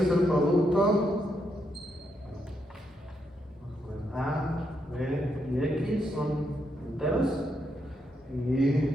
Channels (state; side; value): normal; both; correlation 0.80